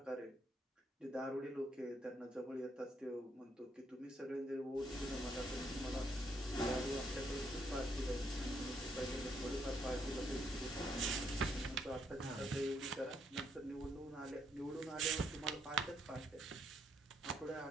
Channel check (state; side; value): normal; both; correlation 0.73